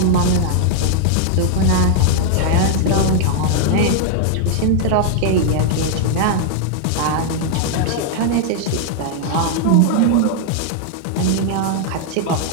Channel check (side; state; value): both; different; correlation 0.00